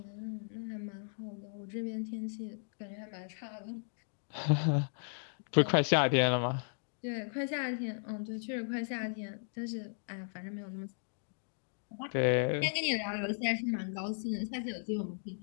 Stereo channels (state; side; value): silent; right; digital silence